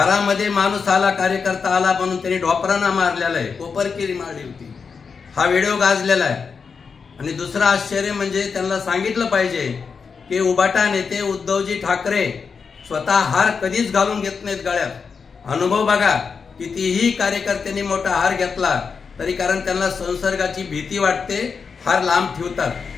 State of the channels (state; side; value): quieter; right; 5.6 dB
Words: माणूस आला, कार्यकर्ता आला म्हणून त्यांनी ढोपरांना मारलेला आहे, कोपरकिरी मारली होती। हा व्हिडिओ गाजलेला आहे। आणि दुसरं आश्चर्य म्हणजे त्यांना सांगितलं पाहिजे की उबाटा नेते उद्धवजी ठाकरे स्वतः हार कधीच घालून घेत नाहीत गळ्यात। अनुभव बघा, कितीही कार्यकर्त्यांनी मोठा हार घेतला तरी कारण त्यांना संसर्गाची भीती वाटते, हार लांब ठेवतात।